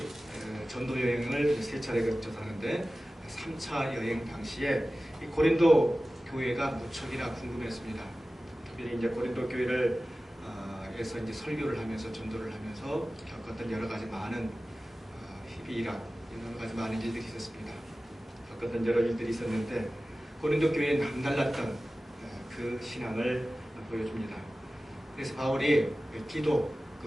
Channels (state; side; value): normal; both; correlation 0.96